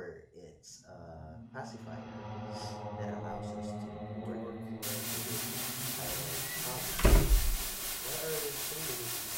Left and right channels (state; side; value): identical; both; correlation 1.00